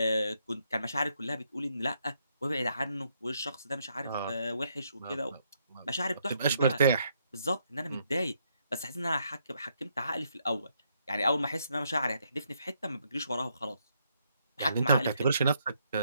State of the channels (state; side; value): inverted; both; correlation -0.75